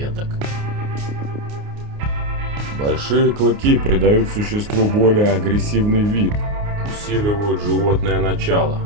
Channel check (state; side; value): late; left; 29 ms